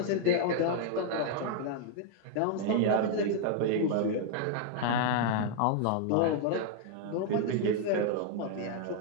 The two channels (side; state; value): both; different; correlation 0.00